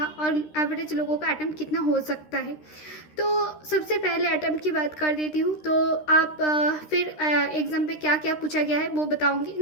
और एवरेज लोगों का अटेम्प्ट कितना हो सकता है। तो सबसे पहले अटेम्प्ट की बात कर देती हूँ। तो आप फिर एग्ज़ाम पे क्या क्या पूछा गया है वो बताऊंगी।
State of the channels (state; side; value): late; right; 13 ms